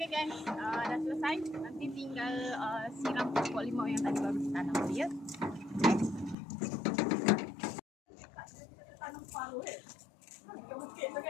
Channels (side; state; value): right; drops out; at 6.4 s